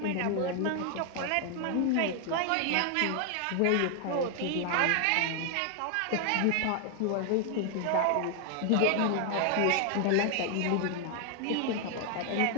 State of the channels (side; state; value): both; different; correlation 0.00